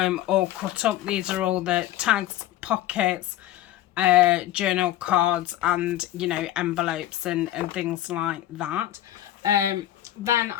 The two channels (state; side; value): quieter; right; 13.5 dB